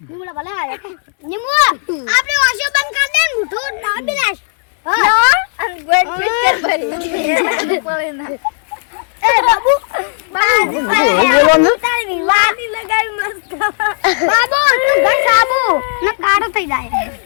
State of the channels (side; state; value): right; silent; 70 dB below the other